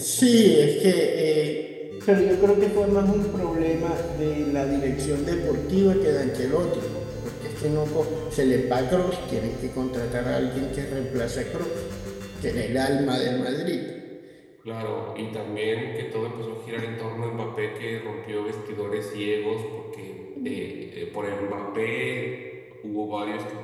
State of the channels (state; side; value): identical; both; correlation 1.00